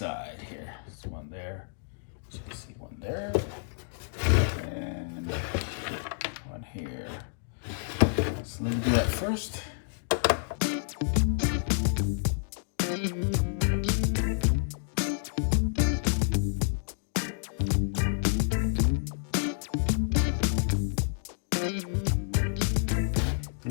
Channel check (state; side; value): silent; right; digital silence